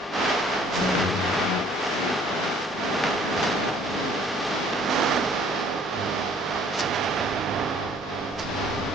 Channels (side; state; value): both; normal; correlation 0.57